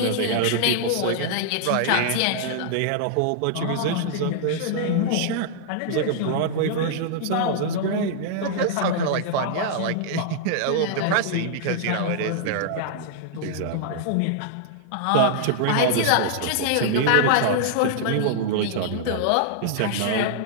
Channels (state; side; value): different; both; correlation -0.01